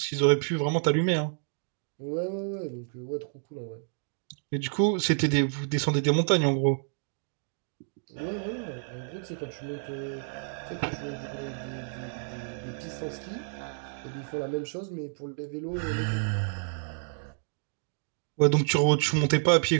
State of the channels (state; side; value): silent; left; digital silence